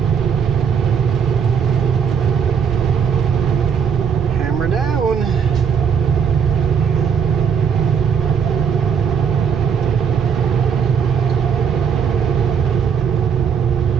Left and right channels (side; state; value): left; quieter; 7.0 dB